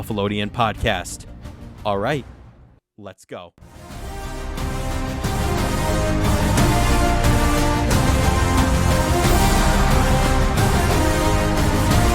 podcast. All right, let's go.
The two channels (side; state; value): both; identical; correlation 1.00